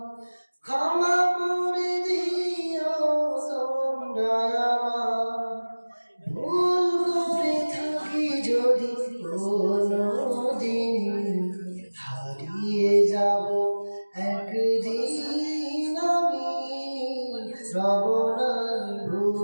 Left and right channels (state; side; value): inverted; both; correlation -1.00